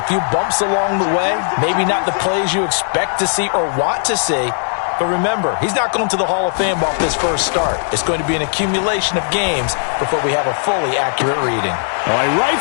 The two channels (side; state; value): right; silent; digital silence